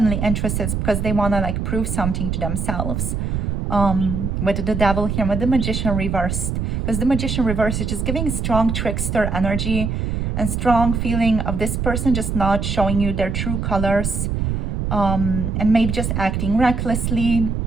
interested, it's because they want to like prove something to themselves. With the devil here, with the Magician reversed, because the Magician reversed is just giving strong trickster energy and strong feeling of this person just not showing you their true colors, and maybe just acting recklessly.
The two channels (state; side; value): noise; right; rumble, 1 dB below the sound